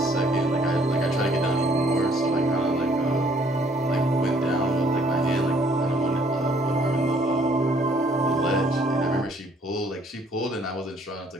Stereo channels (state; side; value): normal; both; correlation 0.62